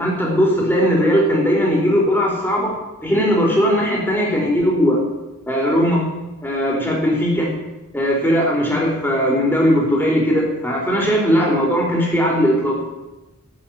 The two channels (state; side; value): normal; both; correlation 0.58